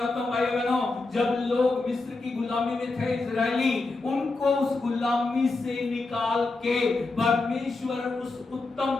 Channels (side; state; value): right; quieter; 3.5 dB